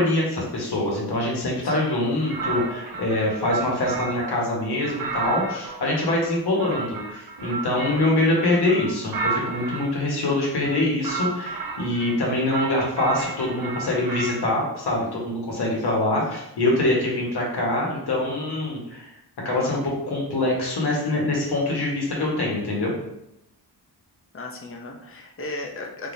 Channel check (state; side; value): normal; both; correlation 0.15